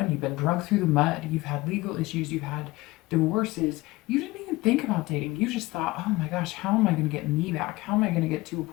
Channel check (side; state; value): right; quieter; 20.3 dB